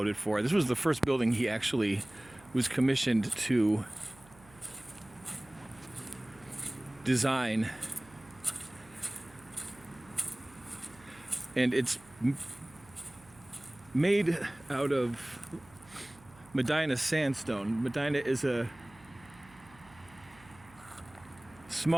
for. This was the first building he actually was commissioned to design, and it's made out of Medina sandstone. Medina is a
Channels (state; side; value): noise; right; hum, 24 dB below the sound